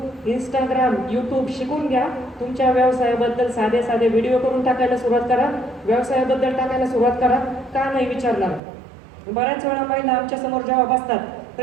इंस्टाग्राम, यूट्यूब शिकून घ्या. तुमच्या व्यवसायाबद्दल साधे साधे व्हिडिओ करून टाकायला सुरुवात करा. व्यवसायाबद्दल टाकायला सुरुवात करा. का नाही विचारणार. बऱ्याच वेळा महिला आमच्या समोर जेव्हा बसतात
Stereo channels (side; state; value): left; drops out; at 8.6 s